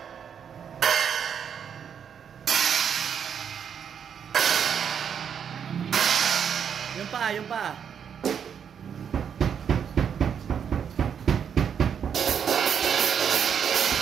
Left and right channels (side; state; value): left; quieter; 7.8 dB